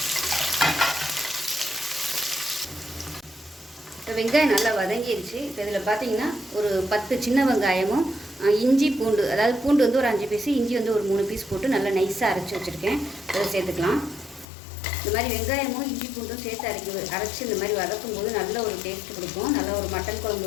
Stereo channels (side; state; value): right; drops out; at 14.5 s